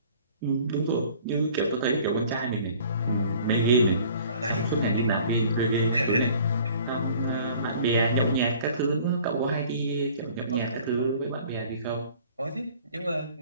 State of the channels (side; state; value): both; inverted; correlation -0.51